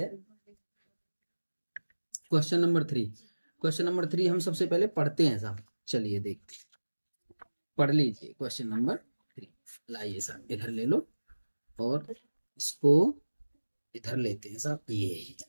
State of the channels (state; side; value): inverted; both; correlation -1.00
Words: क्वेश्चन नंबर 3 हम सबसे पहले पढ़ते हैं साहब। चलिए देखते हैं, पढ़ लीजिए क्वेश्चन नंबर 3। लाइए साहब, इधर ले लो और इसको इधर लेते हैं साहब। ये